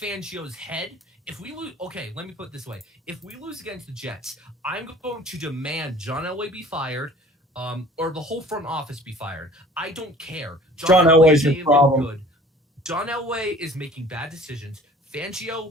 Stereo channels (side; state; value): both; normal; correlation 0.48